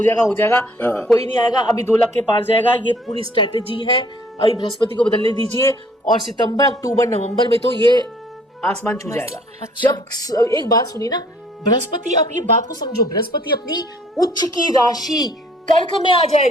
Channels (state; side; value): normal; both; correlation 0.59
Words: जाएगा। कोई नहीं आएगा, अभी 2 लाख के पार जाएगा। ये पूरी स्ट्रेटेजी है। अभी बृहस्पति को बदलने दीजिए और सितंबर, अक्टूबर, नवंबर में तो ये आसमान छू जाएगा। जब एक बात सुनिए ना, बृहस्पति, आप ये बात को समझो, बृहस्पति अपनी उच्च की राशि कर्क में आ